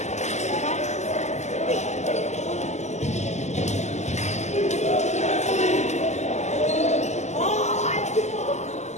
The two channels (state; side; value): late; right; 0.33 ms